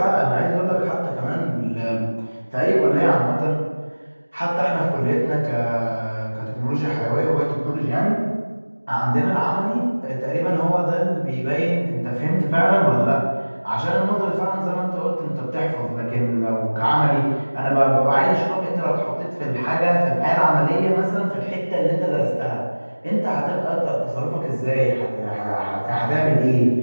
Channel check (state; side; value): inverted; both; correlation -1.00